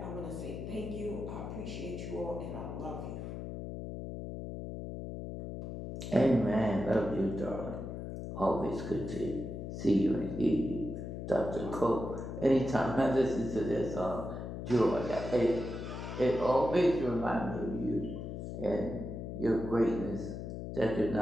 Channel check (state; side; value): noise; left; hum, 7 dB below the sound